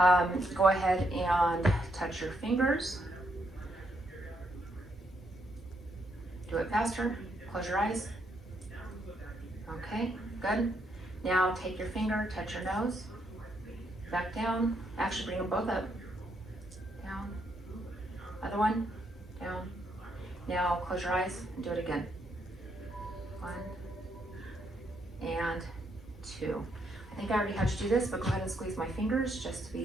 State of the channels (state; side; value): normal; both; correlation 0.76